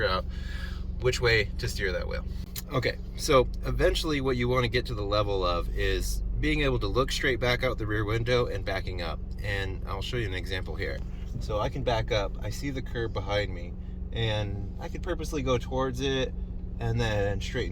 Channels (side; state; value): both; identical; correlation 1.00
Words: out which way to steer that wheel. Okay, so eventually what you wanna get to the level of is being able to look straight back out the rear window and backing up. And I'll show you an example here. So I can back up, I see the curb behind me, and I could purposely go towards it and then